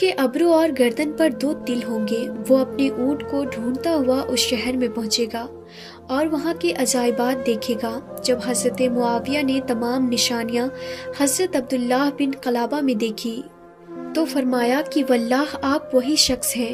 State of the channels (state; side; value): identical; both; correlation 1.00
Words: ابرو اور گردن پر 2 تل ہوں گے۔ وہ اپنے اونٹ کو ڈھونڈتا ہوا اس شہر میں پہنچے گا اور وہاں کے عجائبات دیکھے گا۔ جب حضرت معاویہ نے تمام نشانیاں حضرت عبداللہ بن قلابہ میں دیکھی تو فرمایا کہ واللہ آپ وہی شخص